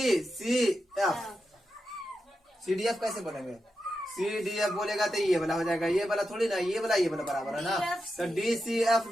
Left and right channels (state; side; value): normal; both; correlation 0.88